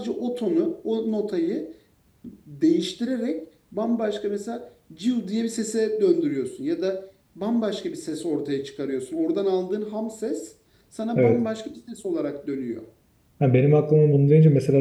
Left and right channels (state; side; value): identical; both; correlation 1.00